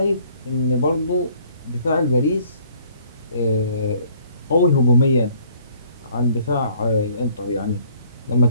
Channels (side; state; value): both; inverted; correlation -0.59